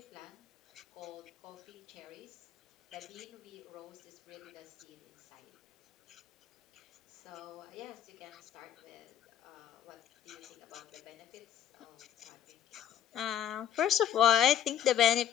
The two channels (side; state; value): right; quieter; 9.8 dB